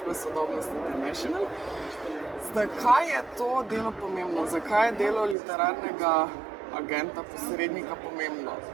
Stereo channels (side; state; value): left; drops out; at 5.4 s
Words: Sodobnost International. Zakaj je to delo pomembno? Zakaj je delo literarnega agenta, posrednika pomembno?